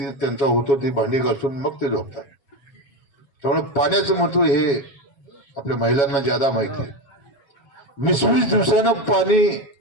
त्यांचा होतो ती भांडी घासून मग ते झोपतात. त्यामुळे पाण्याचं महत्व हे आपल्या महिलांना ज्यादा माहिती आहे. 20 दिवसानं पाणी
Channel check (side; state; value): right; late; 7.2 ms